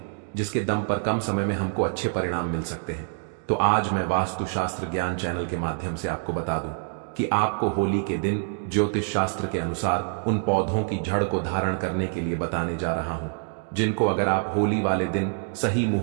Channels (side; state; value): left; silent; digital silence